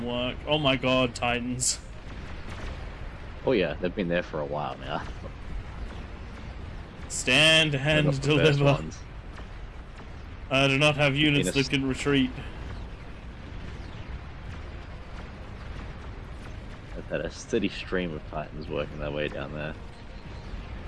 work. Oh my god, Titans. Oh yeah, they've been there for a while now. Stand and deliver. I do not have units that can retreat. I've had a steady stream of Titans working their way down there.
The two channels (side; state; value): both; identical; correlation 1.00